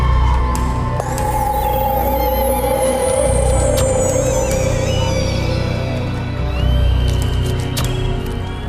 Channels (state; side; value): identical; both; correlation 1.00